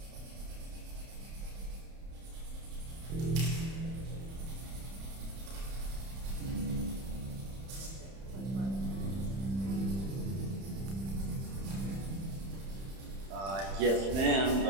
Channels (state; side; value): late; left; 31 ms